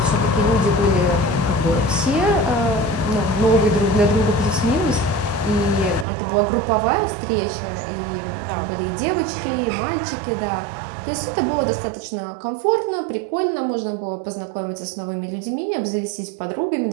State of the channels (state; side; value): drops out; left; at 6.1 s